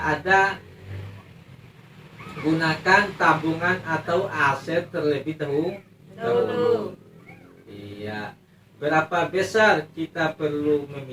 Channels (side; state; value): both; identical; correlation 1.00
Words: ada, gunakan tabungan atau aset terlebih dahulu. Iya. Berapa besar kita perlu